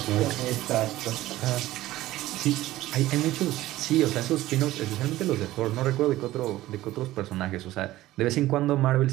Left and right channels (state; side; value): quieter; left; 16.0 dB